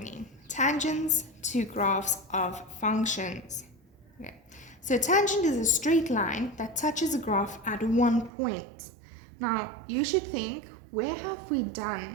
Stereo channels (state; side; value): drops out; left; at 8.3 s